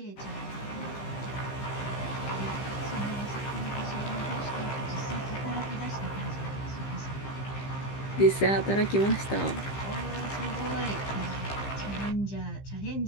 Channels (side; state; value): right; late; 15 ms